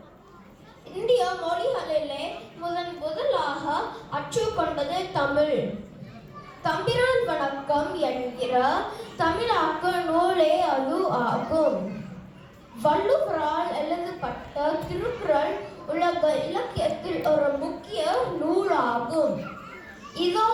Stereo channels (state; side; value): identical; both; correlation 1.00